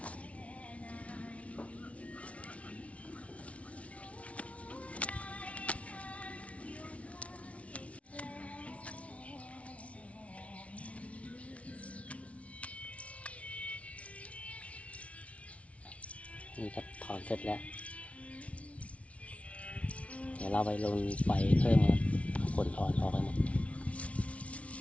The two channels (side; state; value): right; late; 0.064 ms